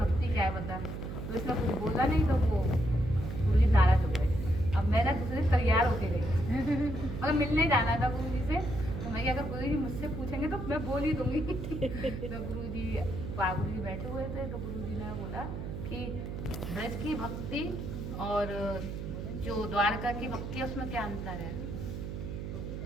क्या है बता, तो उसने कुछ बोला नहीं, तो वो गुरुजी नाराज हो गए। अब मैं ना दूसरे से तैयार होके गई, मतलब मिलने जाना था गुरुजी से, तो मैं अगर गुरुजी मुझसे पूछेंगे तो मैं बोल ही दूंगी। तो गुरुजी बैठे हुए थे, तो गुरुजी ने बोला कि ब्रज की भक्ति और जो द्वारका की भक्ति है उसमें क्या अंतर है।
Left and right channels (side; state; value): right; noise; hum, 6 dB below the sound